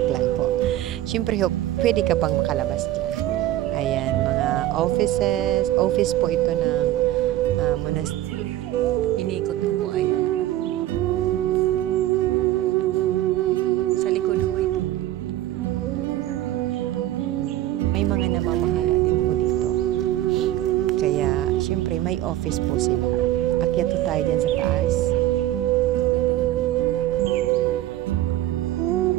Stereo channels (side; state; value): left; quieter; 14.0 dB